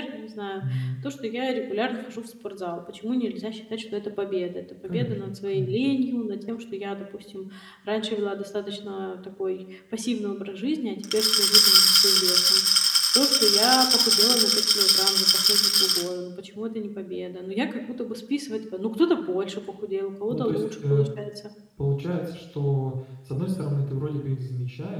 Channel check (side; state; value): both; identical; correlation 1.00